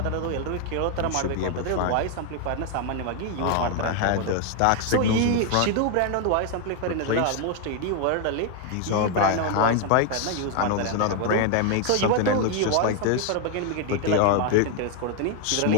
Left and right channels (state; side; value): different; both; correlation 0.01